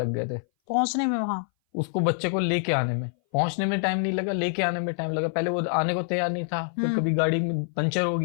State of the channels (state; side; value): silent; right; 58 dB below the other